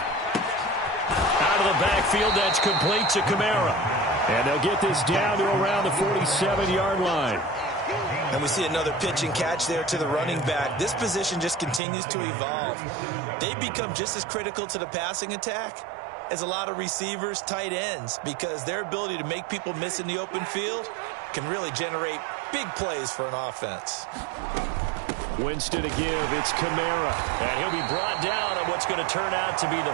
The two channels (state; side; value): drops out; left; at 11.8 s